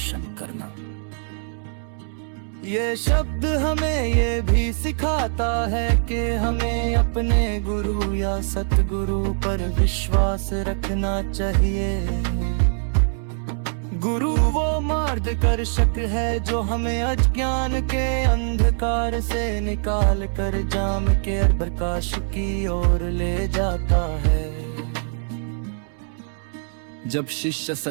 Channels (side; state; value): left; silent; 63 dB below the other